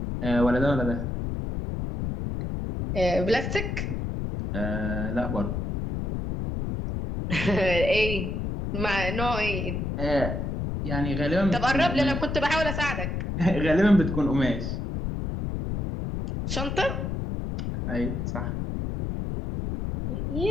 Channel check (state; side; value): noise; left; rumble, 3 dB below the sound